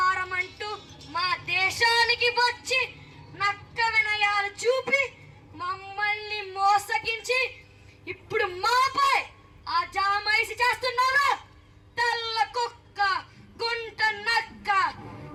అంటూ మా దేశానికి వచ్చి నక్క వినయాలు చూపి మమ్మల్ని మోసగించి ఇప్పుడు మాపై ఆ జామైసి చేస్తున్నావు. తెల్ల కుక్క, గుంట నక్క,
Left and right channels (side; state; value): both; identical; correlation 1.00